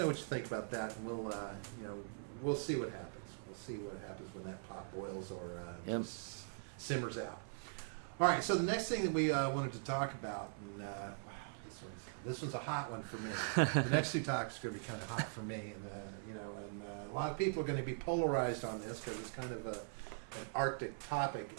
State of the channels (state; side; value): silent; left; 50 dB below the other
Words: what you think about that, and we'll see what happens. We'll see what happens when that pot boils or just simmers out. All right. So the next thing that we wanted to talk about, and wow, this one's a hot one for me. The next two topics are going to be kind of hot for me, and a lot of people are going to be polarized on this because it's kind of an Arctic topic